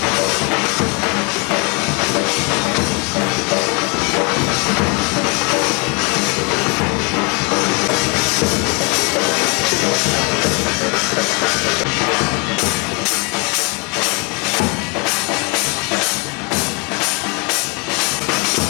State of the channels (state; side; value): quieter; right; 32.2 dB